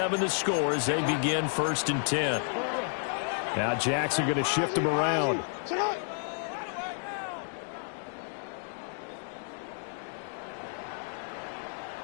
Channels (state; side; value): silent; right; 57 dB below the other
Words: the score as they begin 1st and 10. Now Jackson going to shift him around.